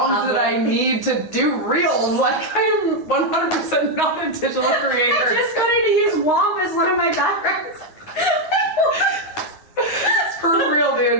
that I need to do reels. I'm 100% not a digital creator. I just wanted to use WAMP as one of my backgrounds. For real,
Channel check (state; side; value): late; right; 9.4 ms